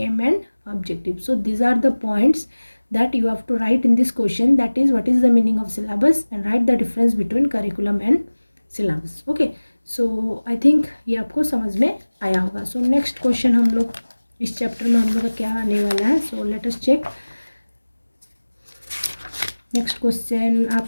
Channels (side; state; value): both; inverted; correlation -1.00